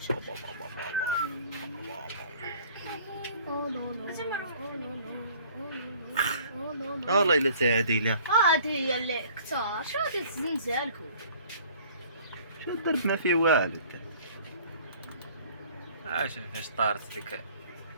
والله الا تعاديله. هادي هي اللي كثار شو هادي الزنزالكم شو الضرب ما فيه والو. شوف فاش طارت ديك.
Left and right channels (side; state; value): both; inverted; correlation -0.53